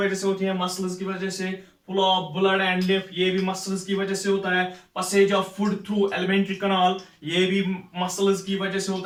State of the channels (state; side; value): identical; both; correlation 1.00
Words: से होती है, muscles की वजह से. फ्लो ऑफ ब्लड एंड लिफ ये भी मसल्स की वजह से होता है. Passage of food through elementary कनाल ये भी मसल्स की वजह से